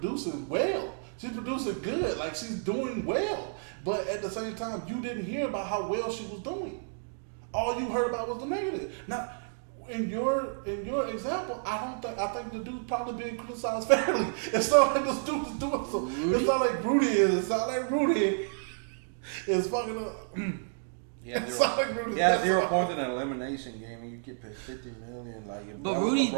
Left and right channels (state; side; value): silent; left; digital silence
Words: well. She's producing good. Like she's doing well. But at the same time, you didn't hear about how well she was doing. All you heard about was the negative. Now, in your example, I think the dude's probably being criticized fairly. It's not like this dude is doing so. It's not like Rudy is. It's not like Rudy is fucking up. It's not like Rudy's 0 points in an elimination game and you get paid $50 million. Like, but Rudy,